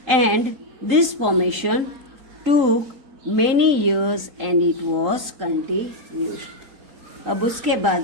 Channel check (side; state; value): left; late; 3.8 ms